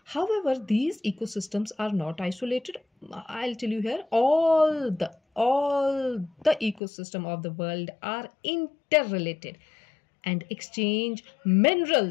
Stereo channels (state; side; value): drops out; right; at 6.8 s